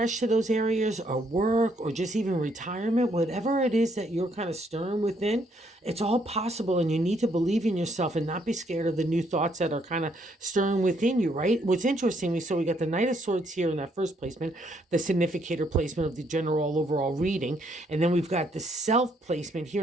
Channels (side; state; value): both; normal; correlation 0.71